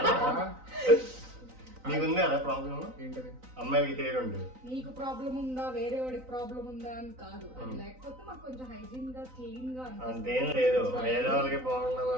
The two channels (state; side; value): late; left; 3.9 ms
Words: నీకుంది అదే ప్రాబ్లం. ఏంటది? అమ్మాయికి హెయిర్ ఉంది. నీకు ప్రాబ్లం ఉందా వేరే వాడికి ప్రాబ్లం ఉందా అని కాదు, లేకపోతే మాకు కొంచెం హైజీన్ గా క్లీన్ గా అంతేం లేదు. వేరే వాళ్ళకి హెయిర్ బాగుండదు